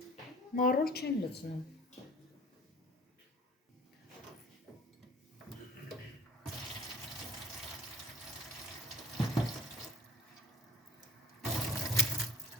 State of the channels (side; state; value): both; normal; correlation 0.50